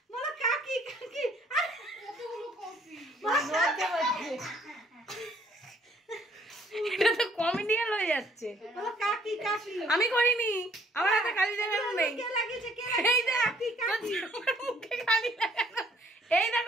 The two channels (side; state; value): both; normal; correlation 0.62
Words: বলো কাকি কাকি আরে কতগুলো কফি এটা তো কমেডিয়ান হয়ে যাচ্ছে বলো কাকি কাকি আমি করিনি আমার হাতে কালি লাগানো নেই কে লাগিয়েছে কে এই দেখ কাকি কাকি তোর মুখে কালি লাগানো এই